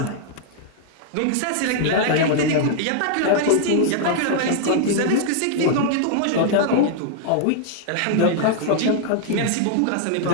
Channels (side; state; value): both; different; correlation -0.01